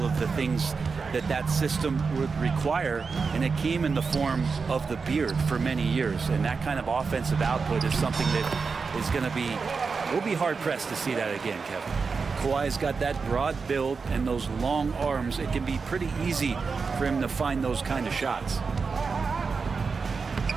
of the things that that system would require, and it came in the form of the beard for many years. And that kind of offensive output is something that is going to be, we'll be hard-pressed to see that again, Kevin. Kawhi's got that broad build and those long arms. It can be pretty easy for him to find those kind of shots.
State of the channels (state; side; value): quieter; left; 4.9 dB